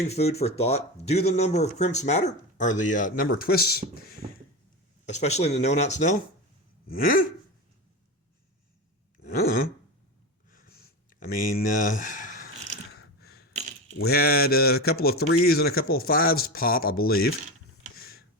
food for thought. Do the number of crimps matter? Or the number of twists, especially in the no-knot snell? I mean, we had a couple of 3s and a couple of 5s pop, I believe.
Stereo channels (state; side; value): normal; both; correlation 0.22